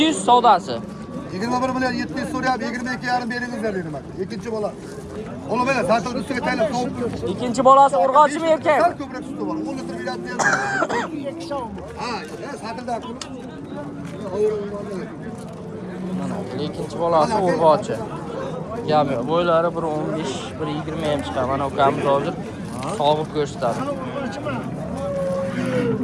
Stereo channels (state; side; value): identical; both; correlation 1.00